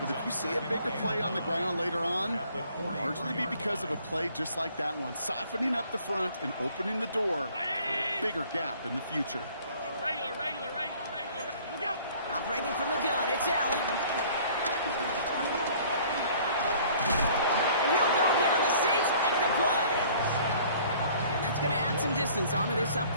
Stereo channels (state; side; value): inverted; both; correlation -0.54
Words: if you see a bigger play on the ground later on, it'll largely be because of a play just like that one, softening up the front and opening the door for a bigger gap in the future. Regular. Look out. Operating from the gun, it's Allen. And he'll go down. The Saints make the play. And that's going to add some distance onto this